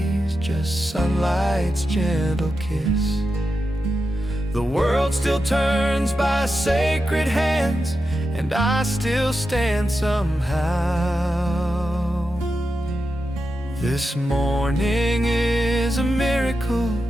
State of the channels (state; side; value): normal; both; correlation 0.89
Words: just sunlight's gentle kiss. The world still turns by sacred hands, and I still stand somehow. This morning is a miracle,